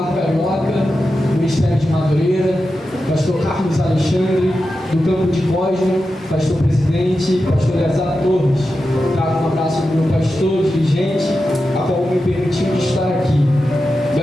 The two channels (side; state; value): both; normal; correlation 0.91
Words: Carioca, Ministério de Madureira. Pastor Carlos Alexandre, do Campo de Cosmo, pastor presidente, pastor Eleazar Torres. Trago um abraço do meu pastor, dirigente, a qual me permitiu de estar aqui.